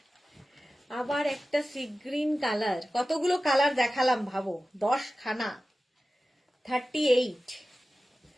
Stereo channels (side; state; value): both; normal; correlation 0.95